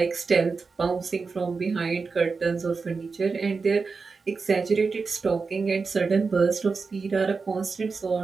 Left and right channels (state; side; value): quieter; left; 4.6 dB